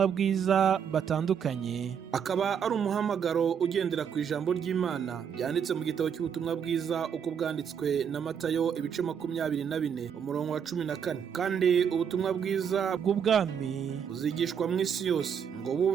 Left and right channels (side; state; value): left; quieter; 7.6 dB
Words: bwiza batandukanye, akaba ari umuhamagaro ugendera ku ijambo ry'Imana byanditse mu gitabo cy'ubutumwa bwiza uko bwanditswe na Matayo ibice 24 umurongo wa 14. Kandi ubutumwa bwiza bw'ubwami buzigishwa mu isi yose ngo